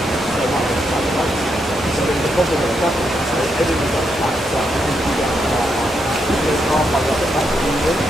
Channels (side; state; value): both; normal; correlation 0.80